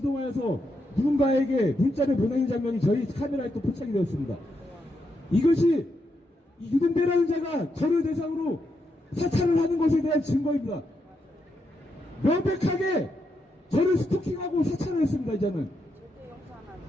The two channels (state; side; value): normal; both; correlation 0.82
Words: 누군가에게 문자를 보내는 장면이 저희 카메라에 또 포착이 되었습니다. 이것이 유동배라는 자가 저를 대상으로 사찰을 하는 것에 대한 증거입니다. 명백하게 저를 스토킹하고 사찰을 했습니다.